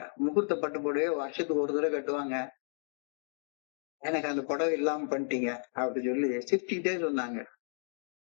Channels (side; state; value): right; silent; digital silence